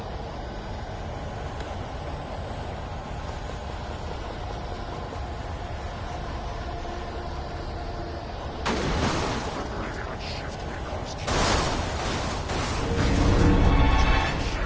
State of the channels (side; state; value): both; identical; correlation 1.00